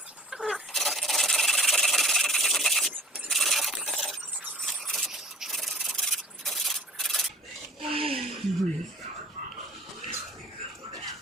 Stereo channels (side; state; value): both; normal; correlation 0.50